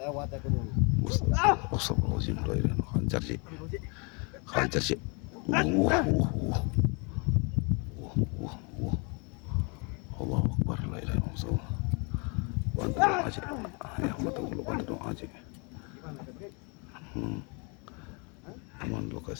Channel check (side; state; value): right; quieter; 33.0 dB